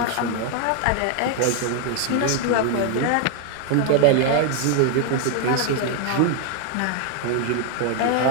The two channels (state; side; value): different; both; correlation 0.00